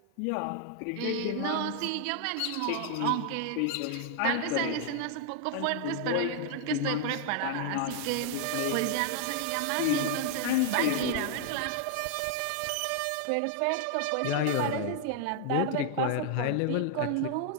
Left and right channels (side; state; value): both; different; correlation 0.00